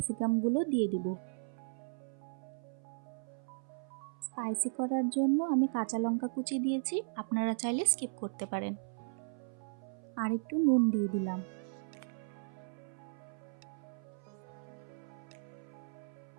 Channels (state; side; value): silent; left; 53 dB below the other